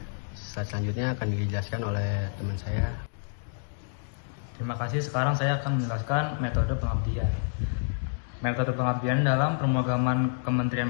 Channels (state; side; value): silent; right; digital silence